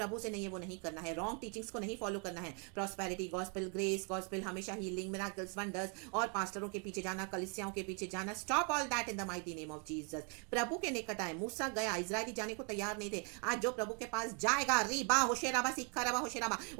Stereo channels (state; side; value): quieter; left; 37.1 dB